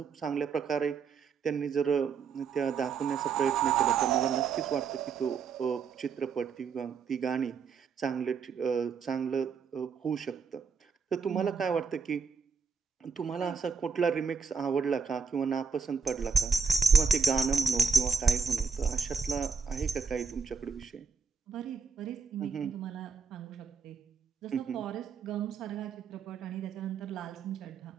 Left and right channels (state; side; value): quieter; left; 5.7 dB